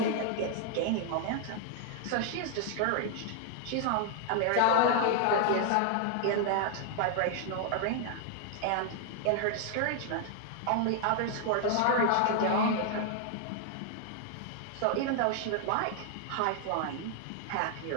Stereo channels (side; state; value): both; different; correlation 0.00